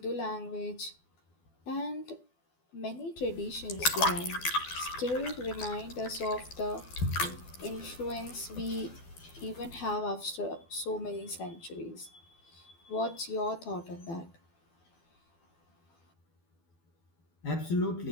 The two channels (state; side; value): late; right; 12 ms